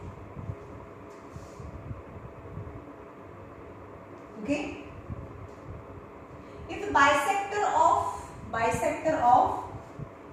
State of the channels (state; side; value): identical; both; correlation 1.00